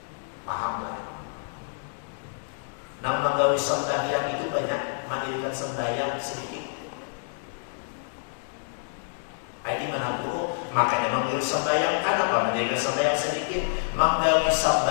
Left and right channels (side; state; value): right; silent; digital silence